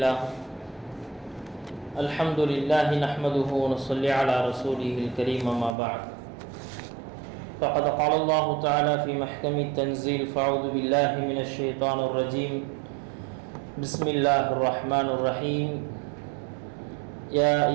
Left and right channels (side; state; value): left; drops out; at 5.8 s